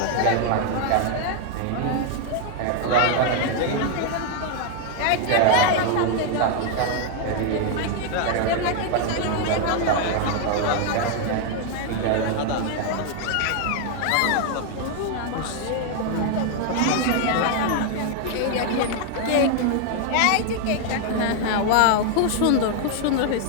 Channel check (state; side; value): different; both; correlation 0.00